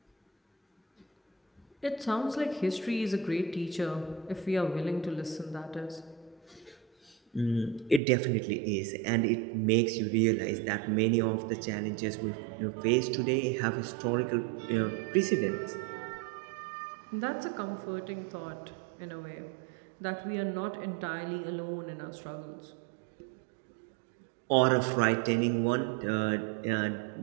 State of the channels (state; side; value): drops out; left; at 8.0 s